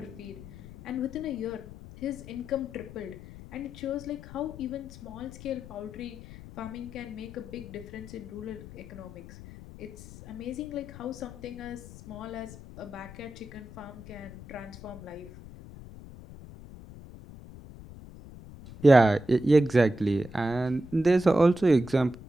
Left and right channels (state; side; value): noise; left; rumble, 15 dB below the sound